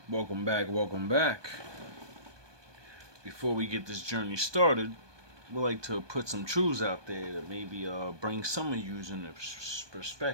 Welcome back, welcome back. Before we get this journey started, we'd like to put some truths out there that maybe bring some of you in a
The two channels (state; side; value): late; left; 1.2 ms